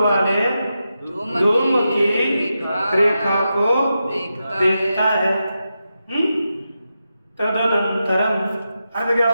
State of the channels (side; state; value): both; inverted; correlation -0.88